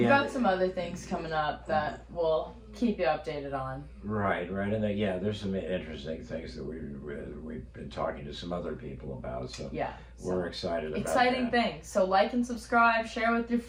got some other things coming up that we'll keep you updated on. Right, and there's some interesting things that we've been talking to some other people about. So we're excited about exciting things. So like and subscribe, share with your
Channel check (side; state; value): both; identical; correlation 1.00